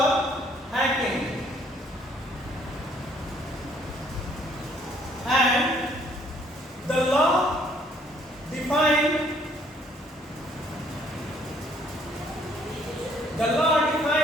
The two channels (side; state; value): both; normal; correlation 0.63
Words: hacking. And the law defines